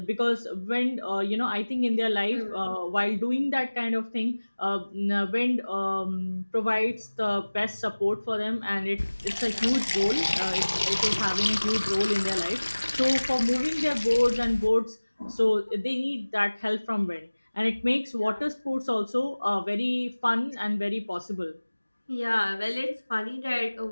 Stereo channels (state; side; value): inverted; both; correlation -1.00